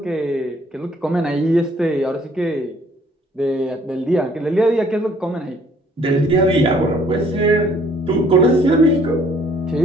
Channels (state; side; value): normal; both; correlation 0.60